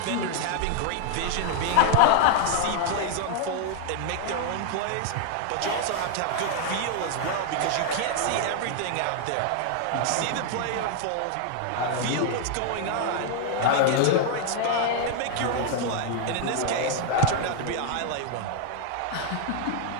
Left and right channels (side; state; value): both; different; correlation 0.00